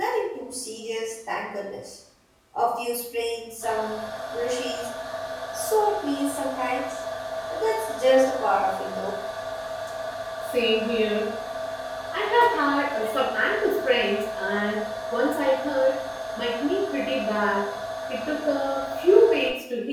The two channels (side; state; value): both; identical; correlation 1.00